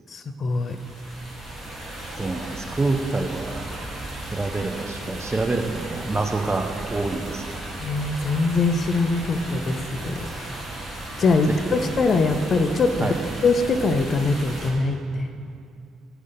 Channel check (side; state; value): both; normal; correlation 0.78